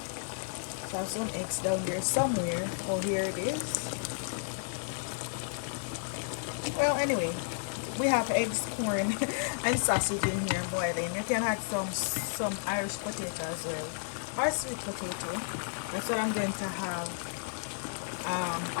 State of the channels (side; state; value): right; silent; digital silence